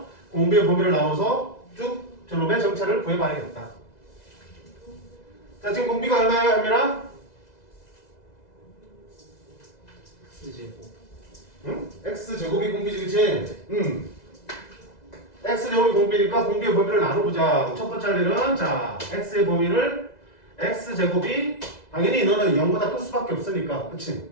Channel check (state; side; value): late; right; 2.0 ms